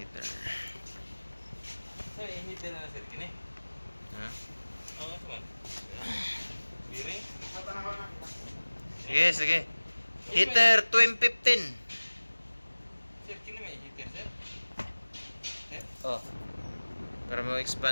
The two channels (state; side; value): inverted; both; correlation -1.00